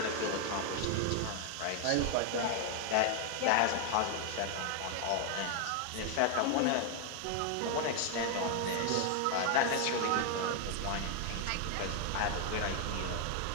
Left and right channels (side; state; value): both; different; correlation 0.00